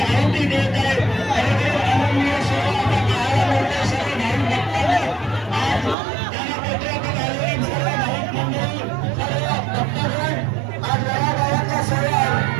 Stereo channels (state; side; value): drops out; left; at 6.0 s